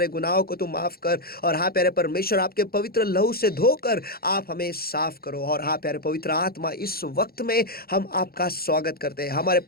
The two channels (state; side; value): late; right; 0.44 ms